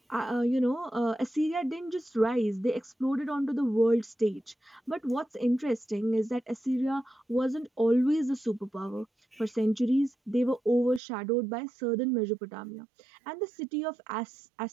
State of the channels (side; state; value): left; drops out; at 11.0 s